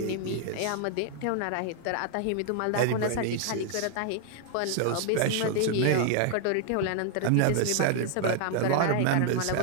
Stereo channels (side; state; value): both; different; correlation 0.00